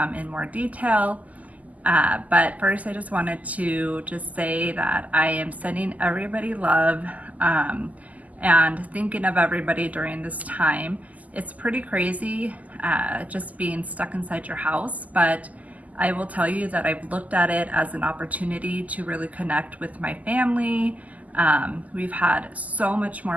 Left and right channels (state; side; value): late; left; 0.076 ms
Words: in more detail. But first, I just wanted to say that I am sending everybody love and thinking of everybody during this time. It's pretty crazy just being stuck inside your house, but I will tell you that I've looked at it as an opportunity to really connect with my family. We've had so much